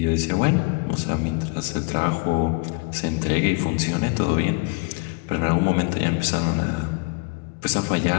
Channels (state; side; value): quieter; right; 28.6 dB